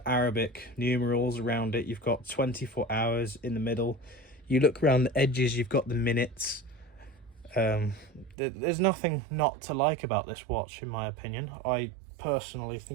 Arabic numerals around it. You've got 24 hours in the middle. You look around the edges, you've got the minutes. There's nothing not to like about this watch, in my opinion. I personally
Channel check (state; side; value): drops out; left; at 8.3 s